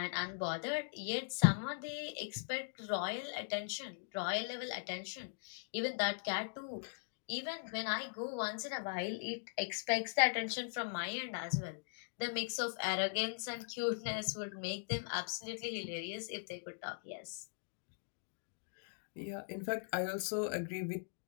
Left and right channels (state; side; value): silent; right; digital silence